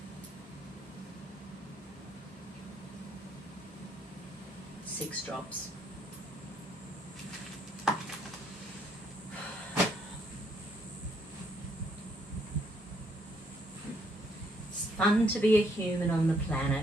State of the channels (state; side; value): normal; both; correlation 0.70